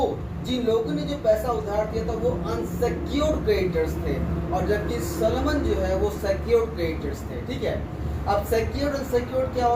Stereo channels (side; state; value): both; identical; correlation 1.00